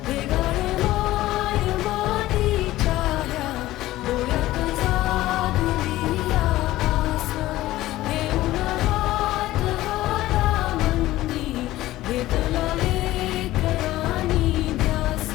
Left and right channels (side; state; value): right; quieter; 16.1 dB